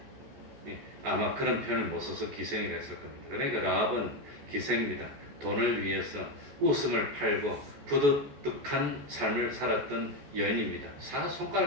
아마 그런 표현을 못 써서 기생이라 했을 겁니다. 그러니까 라합은 기생입니다. 돈을 위해서 웃음을 팔고 부득득한 삶을 살았던 여인입니다.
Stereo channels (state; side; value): late; left; 14 ms